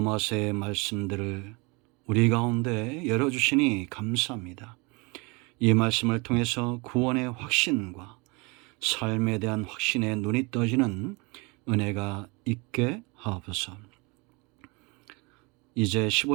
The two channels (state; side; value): quieter; left; 28.1 dB